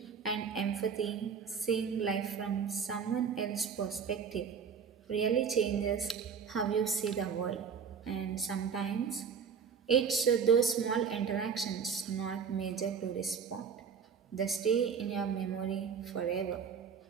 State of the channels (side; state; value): left; quieter; 6.6 dB